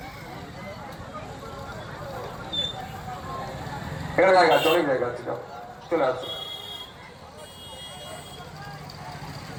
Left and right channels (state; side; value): identical; both; correlation 1.00